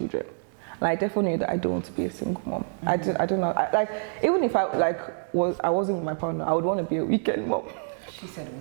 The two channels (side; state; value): left; silent; digital silence